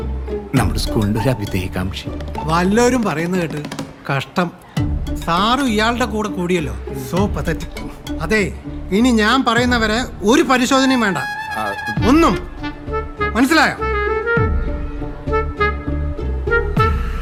നമ്മുടെ സ്കൂളിൻ്റെ ഒരു അഭിതേകാംക്ഷി. വല്ലവരും പറയുന്നത് കേട്ട് കഷ്ടം. സാറും ഇയാളുടെ കൂടെ കൂടിയല്ലോ. So pathetic. അതെ, ഇനി ഞാൻ പറയുന്നവരെ ഒരു പരിശോധനയും വേണ്ട, ഒന്നും. മനസ്സിലായോ?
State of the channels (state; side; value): identical; both; correlation 1.00